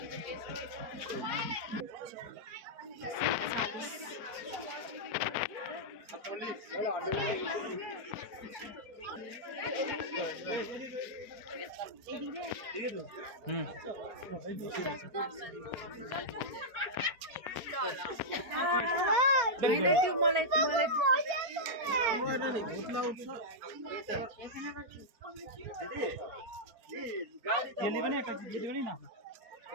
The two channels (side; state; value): left; late; 4.4 ms